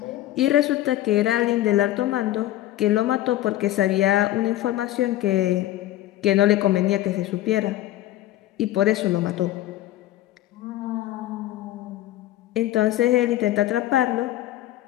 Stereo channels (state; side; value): quieter; right; 14.3 dB